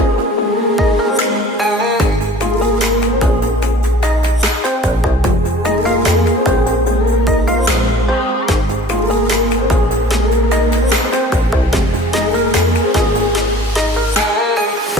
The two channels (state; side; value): normal; both; correlation 0.48